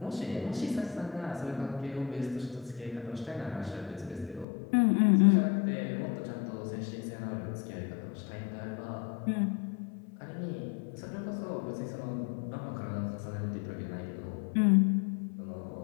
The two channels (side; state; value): right; drops out; at 4.5 s